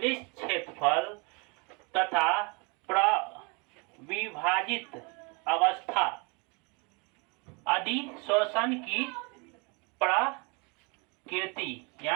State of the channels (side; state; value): left; quieter; 31.1 dB